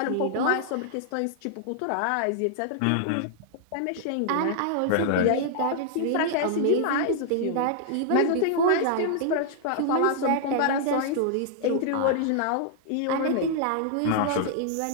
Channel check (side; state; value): both; different; correlation -0.01